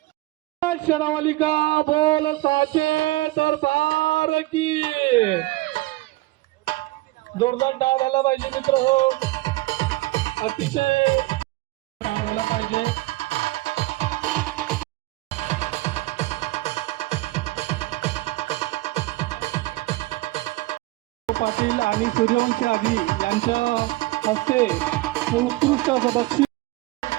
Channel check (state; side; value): quieter; left; 20.0 dB